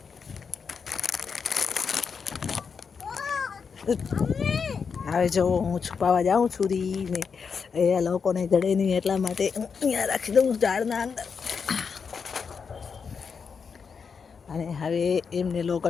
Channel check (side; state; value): right; quieter; 5.9 dB